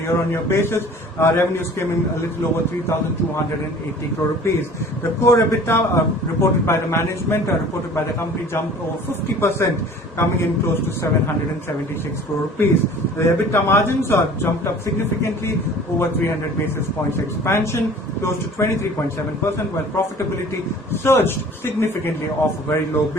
year-on-year basis. Revenues came in a little over 3,280 crore rupees. The core EBITDA reported by the management, reported by the company, jumped over 50%, coming in close to 776 crore rupees. The EBITDA margins jumped up significantly, over 300 basis points expansion, close to 23.7%, while profitability surged significantly off a very low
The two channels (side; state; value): both; normal; correlation 0.47